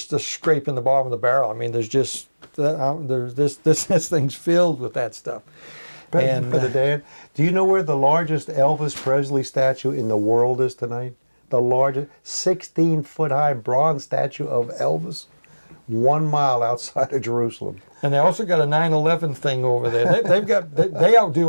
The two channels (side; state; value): both; inverted; correlation -1.00